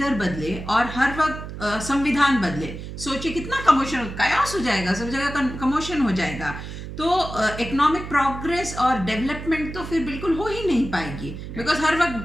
बदले और हर वक्त संविधान बदले, सोचिए कितना कमोशन, कायोस हो जाएगा, सब जगह कमोशन हो जाएगा। तो इकोनॉमिक प्रोग्रेस और डेवलपमेंट तो फिर बिल्कुल हो ही नहीं पाएगी, बिकॉज हर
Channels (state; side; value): noise; right; hum, 9 dB below the sound